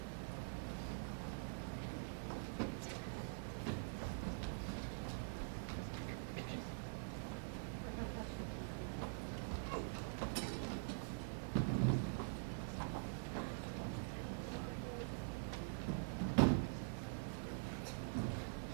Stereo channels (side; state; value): left; silent; digital silence